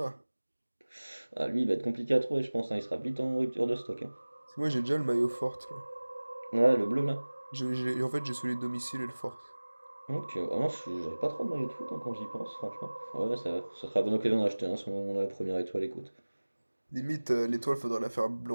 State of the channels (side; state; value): both; inverted; correlation -1.00